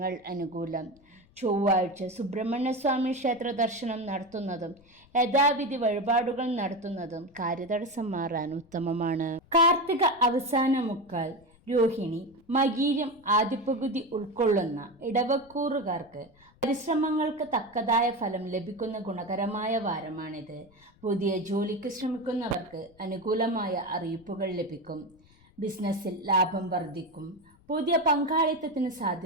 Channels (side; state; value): left; noise; rumble, 29 dB below the sound